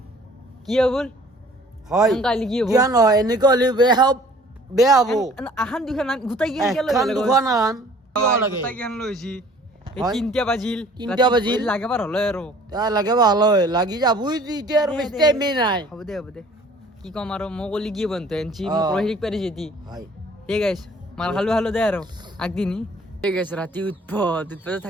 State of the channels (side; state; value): both; normal; correlation 0.53